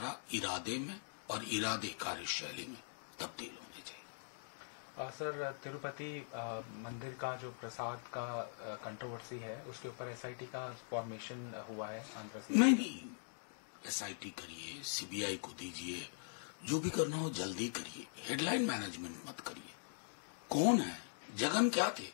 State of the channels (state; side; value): silent; right; digital silence